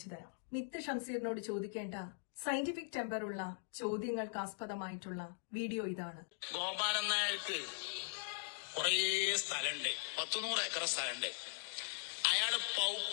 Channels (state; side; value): silent; right; digital silence